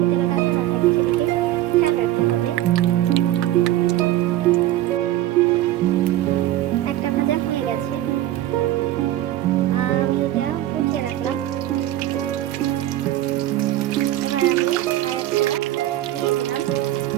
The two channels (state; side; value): quieter; left; 14.1 dB